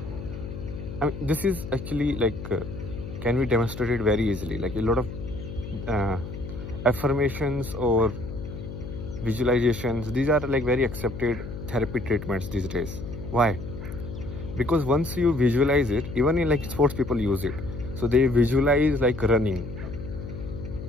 I mean, this is actually like can be demonstrated very easily. Like a lot of affirmations or visualizations, these are like very accepted therapy treatments these days. Why? Because once you visualize it, even in like sports people use it, so they visualize like running.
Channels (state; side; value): noise; left; hum, 9 dB below the sound